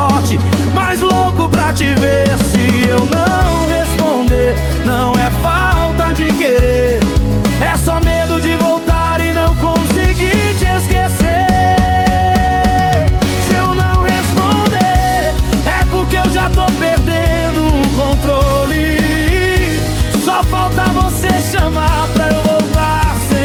mas louco pra te ver. Se eu não responder, não é falta de querer, é só medo de voltar e não conseguir te esquecer. Se eu não responder, é porque eu já tô perdendo o controle. Só falta você chamar pra eu voltar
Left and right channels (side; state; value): both; identical; correlation 1.00